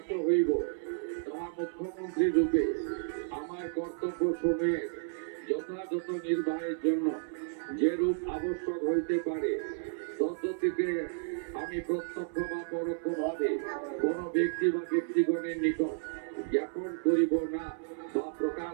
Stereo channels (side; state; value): left; silent; 56 dB below the other